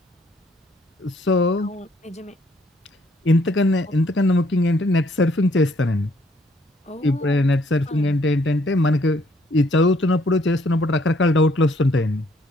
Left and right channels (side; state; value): both; normal; correlation 0.66